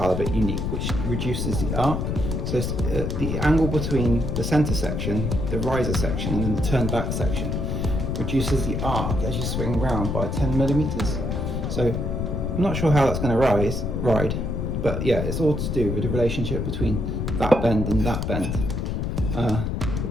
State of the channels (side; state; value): left; noise; rumble, 1 dB below the sound